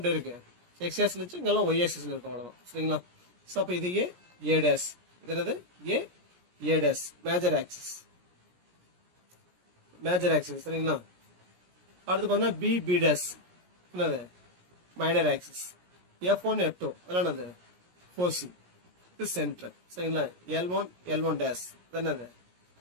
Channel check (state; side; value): late; left; 17 ms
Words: இருக்கு. எக்ஸ் ஆக்சிஸ்ல வச்சு இங்கெல்லாம் ஒய் ஆக்சிஸ்ல இருக்கும் அவ்வளவுதான் சரிங்களா. ஸோ அப்போ இது ஏ டேஸ், இது என்னது ஏ டேஸ் மேஜர் ஆக்சிஸ் சரிங்களா. அடுத்து பார்த்தீங்கன்னா பி டேஸ் என்னது மைனர் ஆக்சிஸ், F1 F2 அதெல்லாம் என்னது ஃபோசி, இது சென்டர் சரிங்களா. L1 டேஸ் இது என்னது